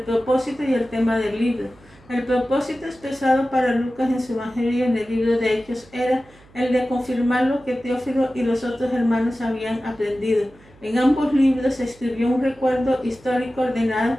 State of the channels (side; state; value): right; noise; hum, 26 dB below the sound